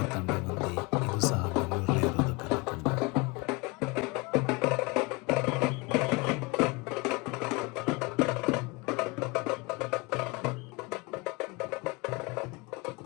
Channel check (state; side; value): quieter; right; 26.4 dB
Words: ತಂಡ ಬಂದು ಇದು ಸಹ ಬೆಂಗಳೂರಲ್ಲೇ ಇರೋದು ಕಲಾ ತಂಡ.